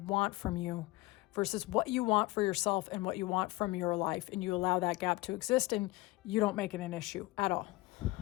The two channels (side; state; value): right; quieter; 20.6 dB